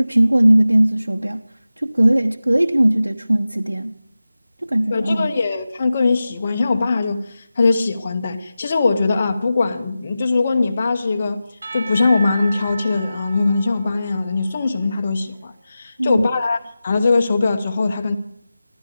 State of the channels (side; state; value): both; inverted; correlation -0.94